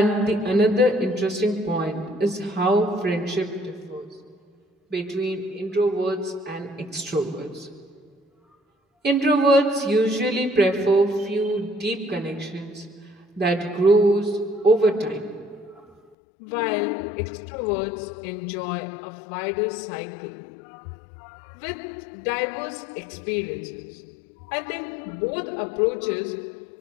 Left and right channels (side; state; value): right; drops out; at 16.0 s